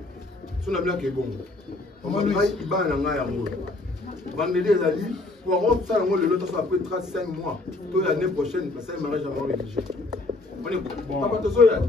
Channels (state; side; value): quieter; right; 3.0 dB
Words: On a bien que bon. On va dire qu'il va en avoir un mot. Vendredi, il a dit, pour avoir ça, le temps après 35 mois, toute l'année prochaine, parce que ça, il m'arrête jamais rédigé. On est bon. Papa, tu sais,